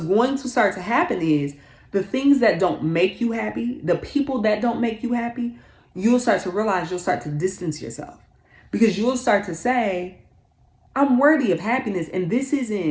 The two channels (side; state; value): both; identical; correlation 1.00